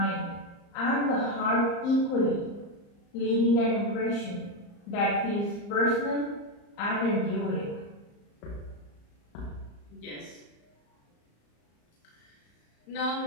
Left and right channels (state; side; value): late; right; 35 ms